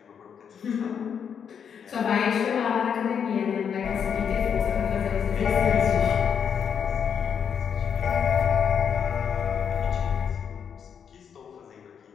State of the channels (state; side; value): quieter; right; 7.5 dB